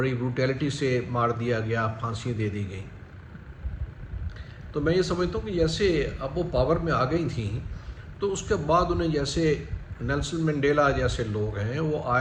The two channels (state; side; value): identical; both; correlation 1.00